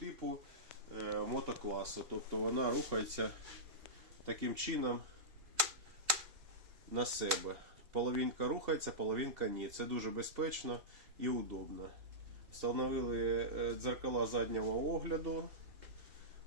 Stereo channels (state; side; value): late; left; 2.7 ms